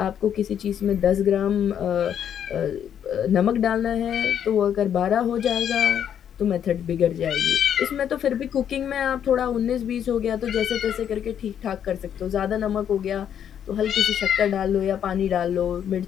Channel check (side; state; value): right; quieter; 9.2 dB